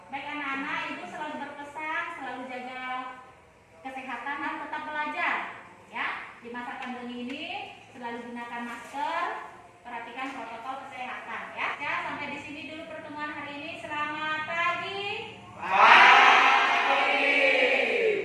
Baik anak-anak, ibu selalu berpesan, selalu jaga kesehatan dan tetap belajar. Ya, di masa pandemi ini selalu gunakan masker, perhatikan protokol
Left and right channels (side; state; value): both; identical; correlation 1.00